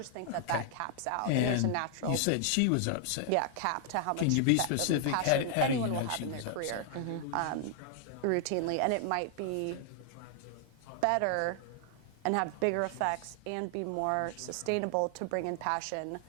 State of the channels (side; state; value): both; different; correlation 0.00